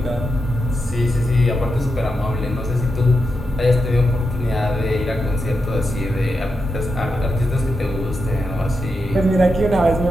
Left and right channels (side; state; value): both; normal; correlation 0.86